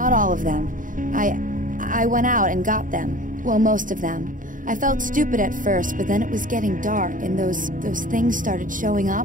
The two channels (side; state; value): left; late; 0.39 ms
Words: all of them. I went out and got them. Well, most of them. I felt stupid at first, but then it was getting dark, and those things started showing